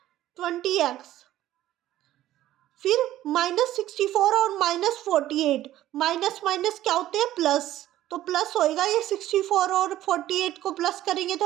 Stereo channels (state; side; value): quieter; left; 13.8 dB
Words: 20x, फिर माइनस 64 और माइनस 48, माइनस माइनस क्या होते हैं प्लस, तो प्लस होएगा, ये 64 और 48 को प्लस करेंगे